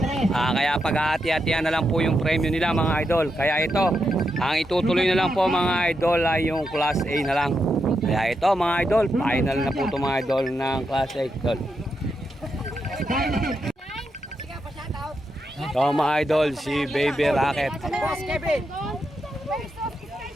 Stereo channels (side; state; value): both; normal; correlation 0.84